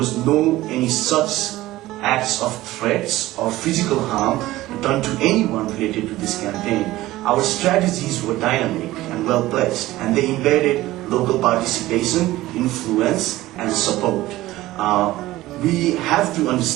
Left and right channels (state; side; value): quieter; left; 16.9 dB